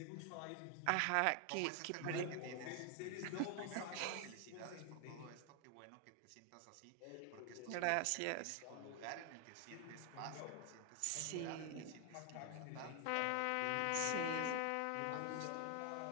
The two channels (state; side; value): different; both; correlation 0.00